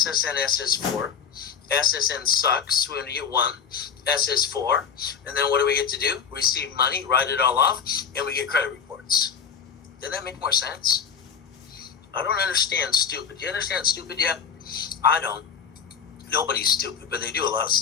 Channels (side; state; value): right; quieter; 6.9 dB